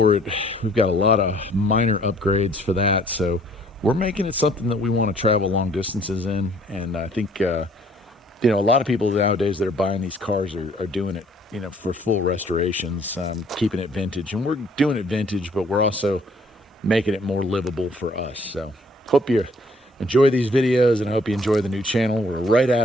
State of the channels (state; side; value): normal; both; correlation 0.60